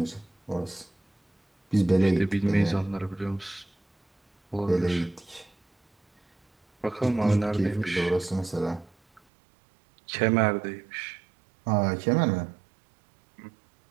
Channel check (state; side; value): drops out; left; at 9.2 s